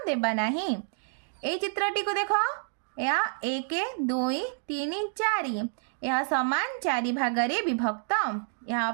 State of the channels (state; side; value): silent; left; 59 dB below the other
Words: देबा नहीं। ए चित्रटी को देखो यह 1 2 3 4 यह समान 4 भाग विभक्त यहाँ